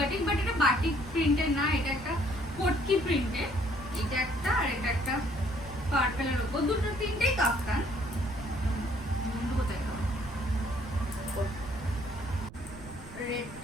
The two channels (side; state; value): right; noise; rumble, 16 dB below the sound